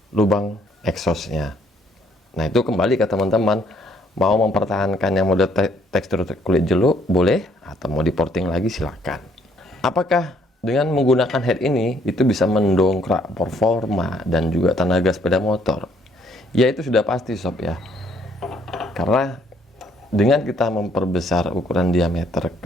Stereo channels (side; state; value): both; normal; correlation 0.66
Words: lubang exhaustnya. Nah, itu kembali ke teman-teman, mau mempertahankan yang model tekstur kulit jeruk boleh, atau mau diporting lagi silakan. Apakah dengan menggunakan head ini itu bisa mendongkrak performa dan juga tenaga sepeda motor? Ya, itu sudah pasti sob ya. Karena dengan kita memperbesar ukuran diameter